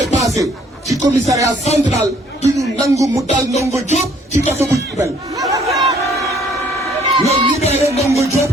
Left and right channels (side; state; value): both; normal; correlation 0.61